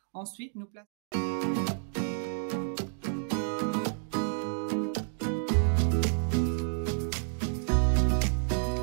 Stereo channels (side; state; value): left; silent; digital silence